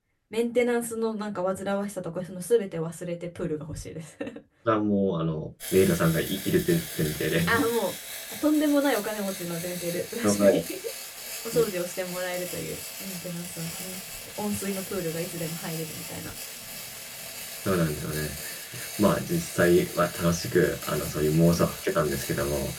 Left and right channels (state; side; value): identical; both; correlation 1.00